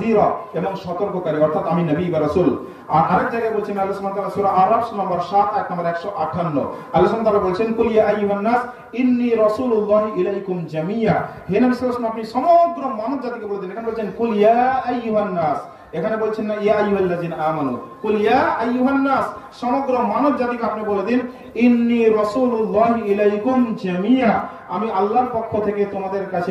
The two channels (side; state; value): both; identical; correlation 1.00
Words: এবং সতর্ককারী, অর্থাৎ আমি নবী বা রাসূল। আর আরেক জায়গায় বলছেন আল্লাহ সুবহানাহু ওয়া তাআলা সূরা আরাফ নম্বর 7 আয়াত নম্বর 158 আল্লাহ সুবহানাহু ওয়া তাআলা বলছেন কুল ইয়া আইয়ুহান নাস ইন্নী রাসূলুল্লাহি ইলাইকুম জামিয়া, হে নবী সাল্লাল্লাহু আলাইহি ওয়াসাল্লাম আপনি সমগ্র মানব জাতিকে বলে দিন। এখানে বলছেন কুল ইয়া আইয়ুহান নাস, এখানে বলছেন না ইয়া আইয়ুহাল্লাযিনা আমানু, কুল ইয়া আইয়ুহান নাস সমগ্র মানব জাতিকে আপনি বলে দিন ইন্নী রাসূলুল্লাহি ইলাইকুম জামিয়া, আমি আল্লাহর পক্ষ থেকে তোমাদের কাছে